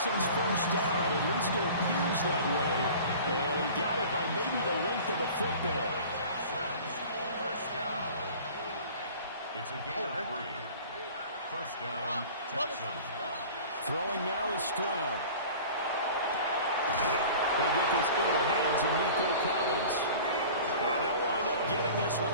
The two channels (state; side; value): inverted; both; correlation -0.42